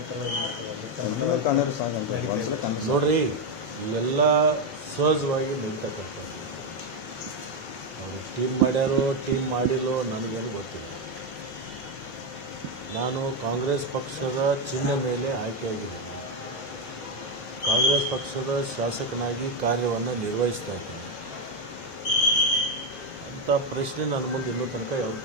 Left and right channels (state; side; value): normal; both; correlation 0.06